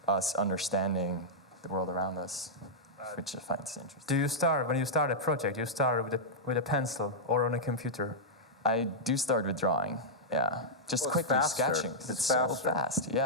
us understanding the world around us, which I find interesting. When you start a project, you start with a pencil or on a computer? I do start with drawing, yeah. Just quickly sketching. It's so fast,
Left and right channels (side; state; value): both; normal; correlation -0.07